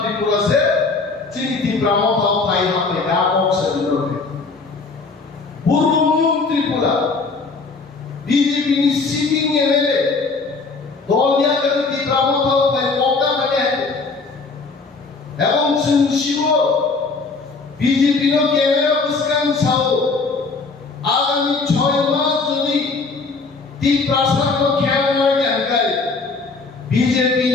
চিনি তীব্রা মথা পাই হবে ব্যাপক সেন্দ্রকে পূর্ব ত্রিপুরা বিজেপি নি সিটিং এমএলএ দলিয়া করে তীব্রা মথা পাই পকা মানে এবং শিব বিজেপি র ক্যামেরা পুস্কান সাও আগামী 6 মাস যদি তীব্রা সানো খেয়াল জানকাই বিজেপি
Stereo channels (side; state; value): right; quieter; 4.1 dB